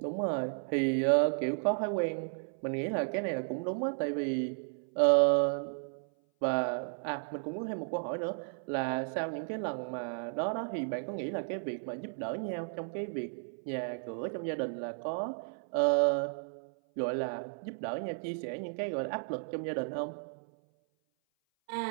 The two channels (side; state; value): left; silent; 55 dB below the other